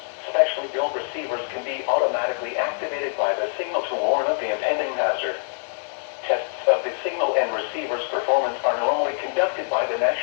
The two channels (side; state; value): right; silent; 62 dB below the other